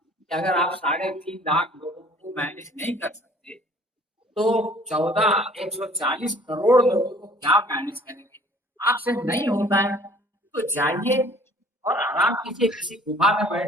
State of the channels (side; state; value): both; normal; correlation 0.53